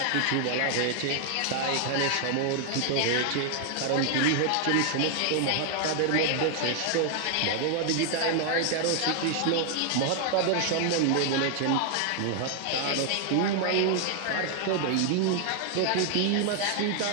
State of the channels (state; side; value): different; both; correlation 0.00